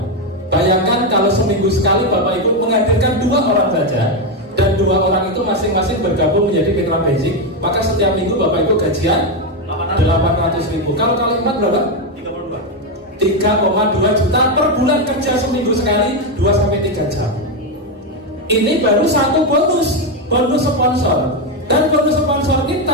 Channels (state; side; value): normal; both; correlation 0.07